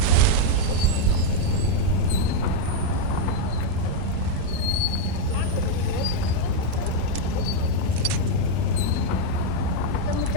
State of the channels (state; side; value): different; both; correlation 0.00